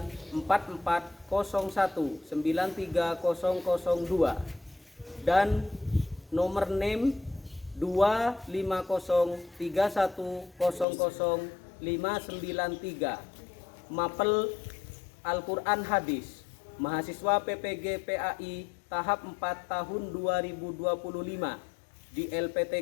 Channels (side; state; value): right; drops out; at 10.9 s